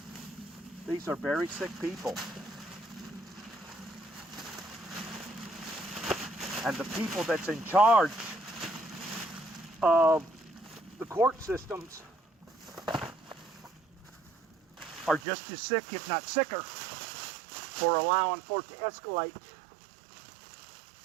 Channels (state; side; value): drops out; left; at 15.2 s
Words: These are very sick people. And the people that's in charge of the court systems are just as sick, if not sicker, for allowing for it to escalate